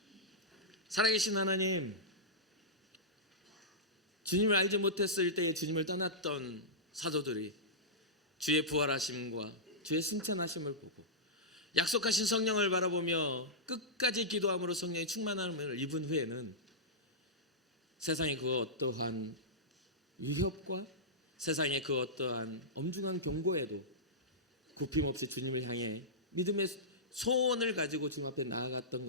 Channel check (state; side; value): normal; both; correlation -0.13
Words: 살아계신 하나님, 주님을 알지 못했을 때에 주님을 떠났던 사도들이 주의 부활하심과 주의 승천하심을 보고 약속하신 성령을 바라보며 끝까지 기도함으로 성령의 충만함을 입은 후에는 세상의 그 어떠한 위협과 세상의 그 어떠한 엄중한 경고에도 굽힘없이 주님을 향해 믿음의 소원을 가지고 주님 앞에 나아갔던